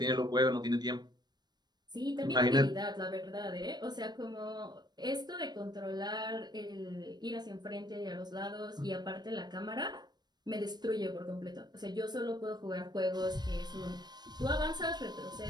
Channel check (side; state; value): left; late; 0.20 ms